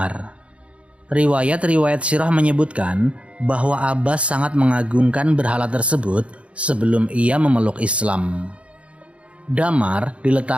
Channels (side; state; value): left; late; 0.062 ms